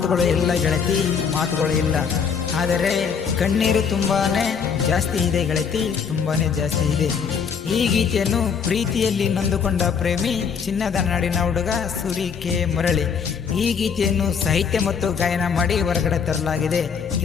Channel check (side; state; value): right; quieter; 6.5 dB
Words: ಇಲ್ಲ ಗೆಳತಿ, ಮಾತುಗಳು ಇಲ್ಲ. ಆದರೆ ಕಣ್ಣೀರು ತುಂಬಾನೇ ಜಾಸ್ತಿ ಇದೆ ಗೆಳತಿ, ತುಂಬಾನೇ ಜಾಸ್ತಿ ಇದೆ. ಈ ಗೀತೆಯನ್ನು ಪ್ರೀತಿಯಲ್ಲಿ ನೊಂದುಕೊಂಡ ಪ್ರೇಮಿ ಚಿನ್ನದ ನಾಡಿನ ಹುಡುಗ ಸೂರಿ ಕೆ ಮುರಳಿ ಈ ಗೀತೆಯನ್ನು ಸಾಹಿತ್ಯ ಮತ್ತು ಗಾಯನ ಮಾಡಿ ಹೊರಗಡೆ ತರಲಾಗಿದೆ.